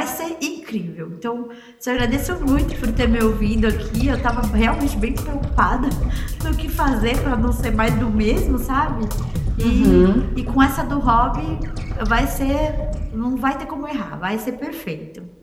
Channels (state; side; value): identical; both; correlation 1.00